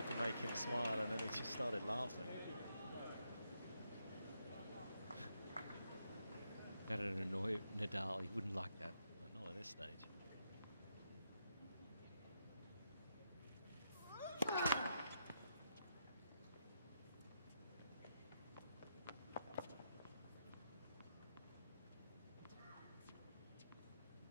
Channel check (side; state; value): both; inverted; correlation -0.80